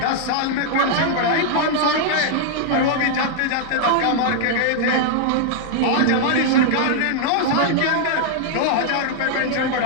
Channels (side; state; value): both; different; correlation -0.01